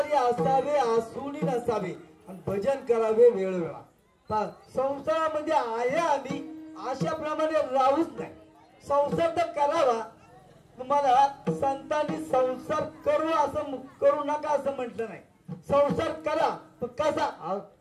असावे आसुनी नसावे आणि भजन करावे वेळोवेळा. संसारामध्ये आहे आम्ही अशाप्रमाणे राहूच नाही. संसार तर करावा. तुम्हाला संतांनी संसार करू नका असं म्हटलं नाही. संसार करा पण कसा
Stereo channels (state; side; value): identical; both; correlation 1.00